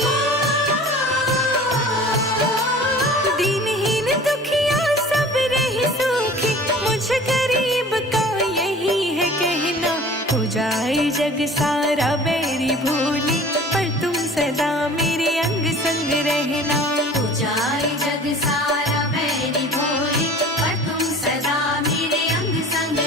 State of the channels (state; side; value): normal; both; correlation 0.44